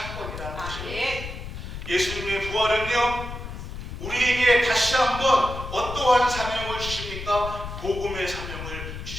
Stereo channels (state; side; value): noise; left; rumble, 9 dB below the sound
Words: 것입니다. 예수님의 부활은요, 우리에게 다시 한번 어떠한 사명을 주십니까? 복음의 사명을